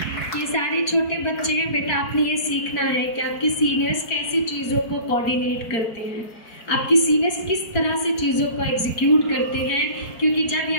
ये सारे छोटे बच्चे हैं बेटा, आपने ये सीखना है कि आपके सीनियर्स कैसी चीज़ों को कोऑर्डिनेट करते हैं, आपकी सीनियर्स किस तरह से चीज़ों को एग्जीक्यूट करते हैं, क्योंकि जब ये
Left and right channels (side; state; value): right; late; 4.6 ms